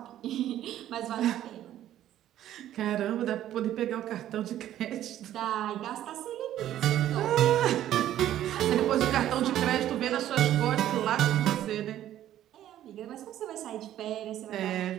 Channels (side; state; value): left; quieter; 12.3 dB